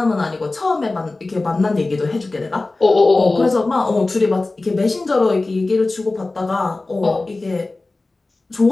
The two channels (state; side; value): quieter; right; 3.2 dB